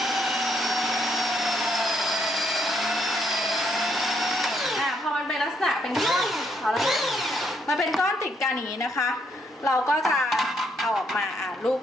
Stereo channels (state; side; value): normal; both; correlation 0.74